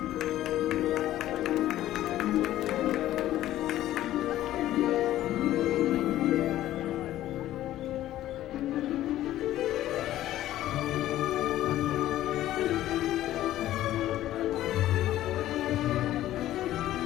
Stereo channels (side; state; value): right; quieter; 13.8 dB